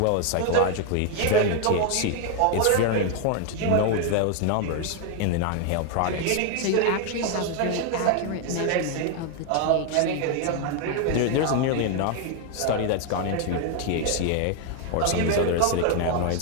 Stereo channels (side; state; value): both; different; correlation 0.01